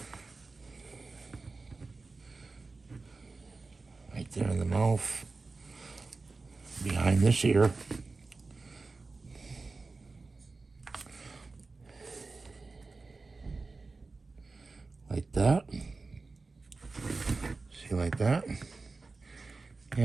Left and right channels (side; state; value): left; quieter; 3.8 dB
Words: Right there in the mouth, behind this ear. Like that. See, like that.